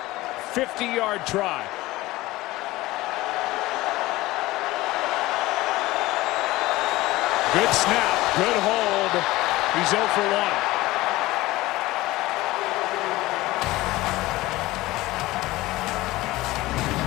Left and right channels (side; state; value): right; quieter; 18.6 dB